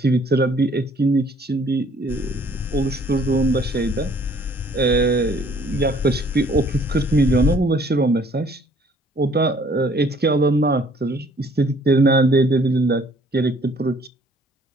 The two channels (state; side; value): normal; both; correlation 0.59